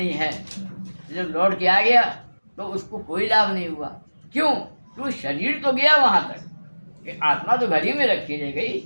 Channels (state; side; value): inverted; both; correlation -1.00